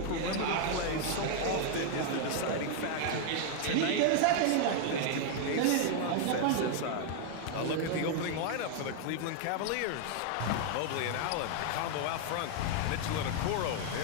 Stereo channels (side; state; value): both; different; correlation 0.00